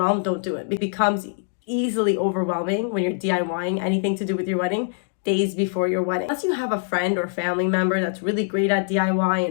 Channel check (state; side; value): silent; right; digital silence